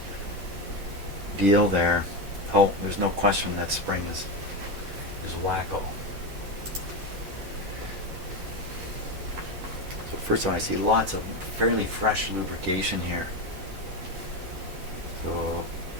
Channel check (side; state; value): left; late; 10 ms